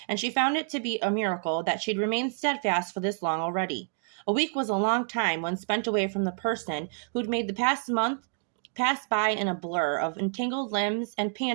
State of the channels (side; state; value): left; silent; 59 dB below the other